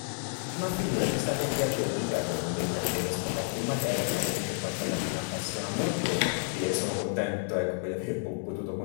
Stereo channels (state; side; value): silent; right; digital silence